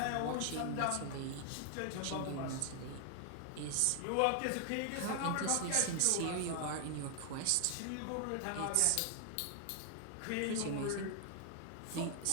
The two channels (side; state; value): both; different; correlation 0.00